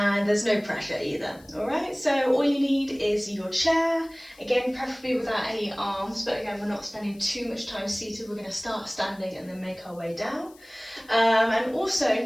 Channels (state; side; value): noise; left; hiss, 27 dB below the sound